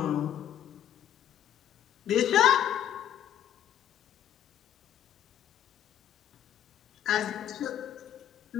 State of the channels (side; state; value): right; quieter; 10.6 dB